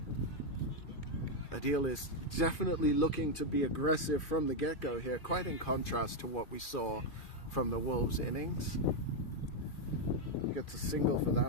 Adil is definitely looking to be aggressive from the get-go here, quite in contrast to what we saw from the Wolves innings. He gets a single for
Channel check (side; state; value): right; late; 2.5 ms